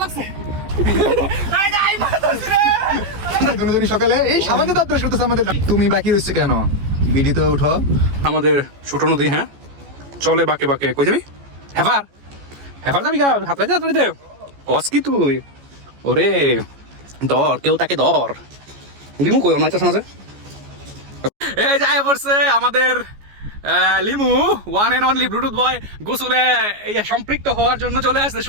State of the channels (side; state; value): left; late; 14 ms